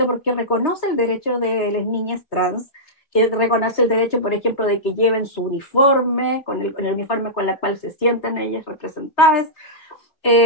porque reconoce el derecho de las niñas trans, que reconoce el derecho, por ejemplo, de que lleven su uniforme, con el uniforme con el cual se sientan ellas representadas.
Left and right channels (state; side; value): late; right; 3.5 ms